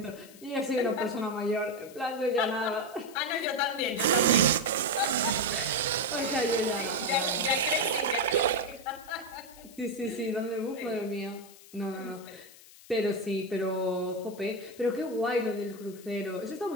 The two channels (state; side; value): noise; left; hiss, 21 dB below the sound